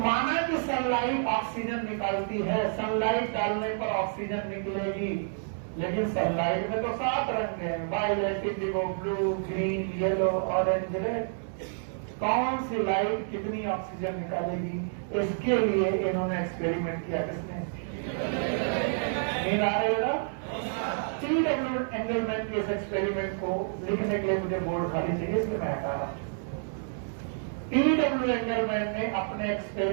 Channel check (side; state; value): left; silent; digital silence